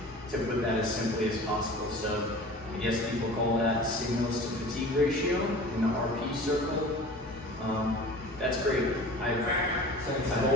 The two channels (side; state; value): both; normal; correlation 0.40